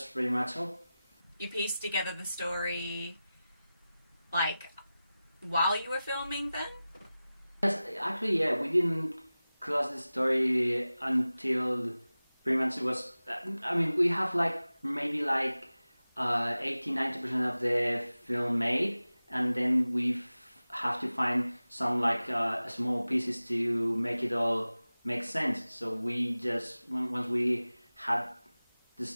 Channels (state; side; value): inverted; both; correlation -0.96